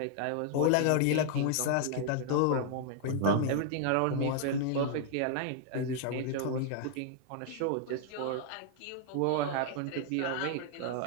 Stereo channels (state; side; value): different; both; correlation 0.00